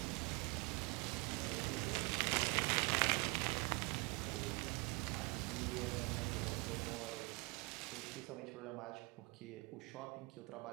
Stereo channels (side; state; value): left; quieter; 28.5 dB